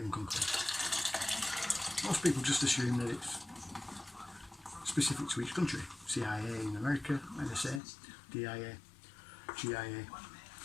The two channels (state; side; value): drops out; right; at 7.8 s